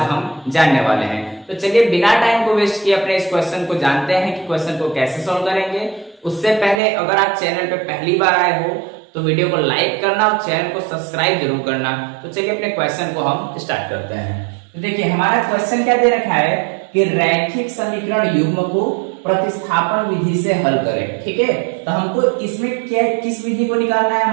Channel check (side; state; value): left; drops out; at 6.8 s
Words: हम जानने वाले हैं। तो चलिए बिना टाइम को वेस्ट किए अपने इस क्वेश्चन को जानते हैं कि क्वेश्चन को कैसे सॉल्व करेंगे। उससे पहले अगर आप चैनल पे पहली बार आए हो तो वीडियो को लाइक करना और चैनल को सब्सक्राइब जरूर करना। तो चलिए अपने क्वेश्चन को हम स्टार्ट करते हैं। तो देखिए हमारा क्वेश्चन क्या दे रखा है कि रैखिक समीकरण युग्म को प्रतिस्थापन विधि से हल करें। ठीक है, तो हमको इसमें क्या किस विधि को निकालना है,